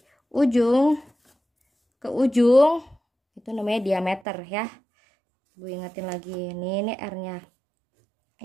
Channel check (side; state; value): left; drops out; at 4.2 s